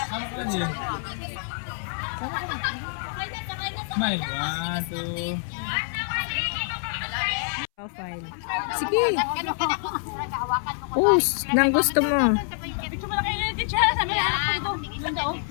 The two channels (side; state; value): right; silent; 61 dB below the other